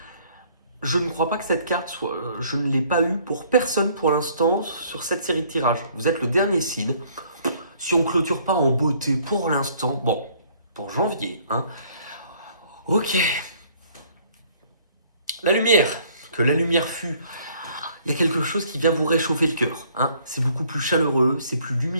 je ne crois pas que cette carte soit. Je ne l'ai pas eue pour personne pour l'instant sur cette série de tirages. Vous êtes le dernier seed. Si on clôture pas en beauté pour l'instant, bon, pour janvier, hein. Ok. La lumière. Que la lumière fût. Il y a quelque chose qui vient vous réchauffer le cœur, hein. C'est beaucoup plus chaleureux, c'est plus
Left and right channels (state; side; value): inverted; both; correlation -0.60